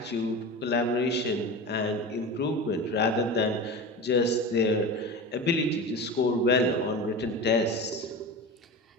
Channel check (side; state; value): both; normal; correlation 0.28